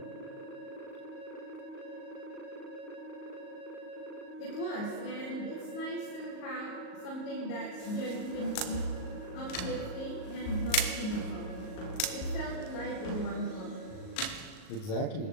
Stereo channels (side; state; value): right; late; 38 ms